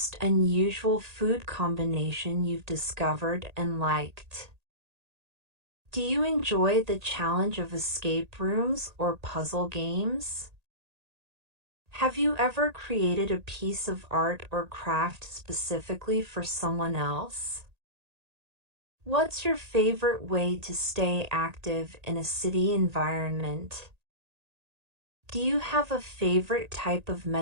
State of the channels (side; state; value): left; late; 1.8 ms